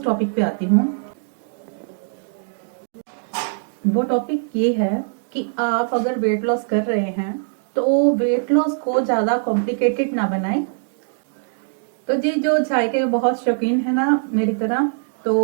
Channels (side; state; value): left; silent; digital silence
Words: टॉपिक पे आती हूँ। वो टॉपिक ये है कि आप अगर वेट लॉस कर रहे हैं तो वेट लॉस को ज्यादा कॉम्प्लिकेटेड ना बनाएं। तो जी जो चाय के बहुत शौकीन है ना मेरी तरह,